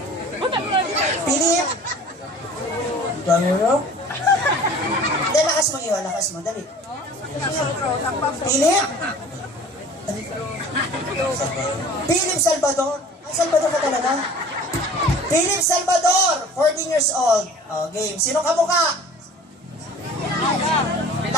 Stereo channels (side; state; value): both; normal; correlation 0.45